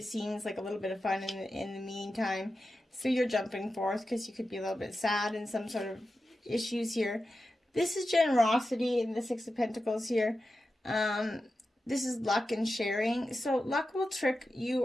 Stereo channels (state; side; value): normal; both; correlation 0.92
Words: seems like a little bit of fun in the meantime. So you're jumping forth because you could be a little bit sad in some sort of issues here. This is generosity in the Six of Pentacles here. This is luck and sharing. So luck will trick you